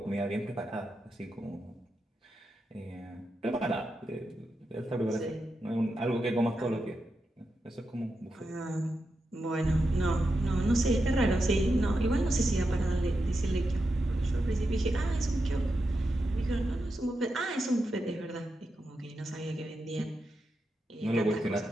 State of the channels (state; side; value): normal; both; correlation 0.87